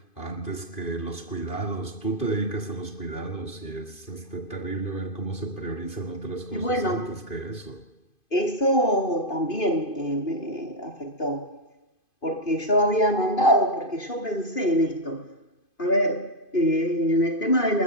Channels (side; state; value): right; late; 2.5 ms